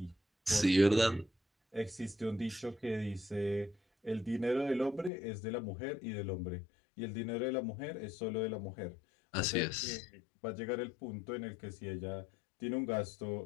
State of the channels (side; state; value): right; drops out; at 5.1 s